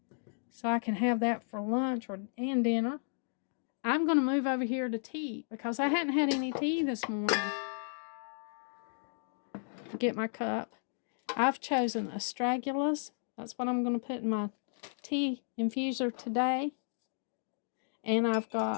so I can have that for lunch and dinner, I'm going to move over here to tea, because I hadn't had any tea this morning. Get my cup. I've chosen astragalus. That's what I'm going to put in my tea infuser today. And I've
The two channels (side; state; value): right; silent; digital silence